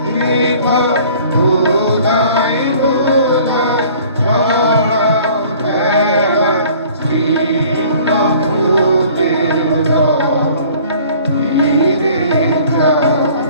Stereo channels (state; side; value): inverted; both; correlation -0.51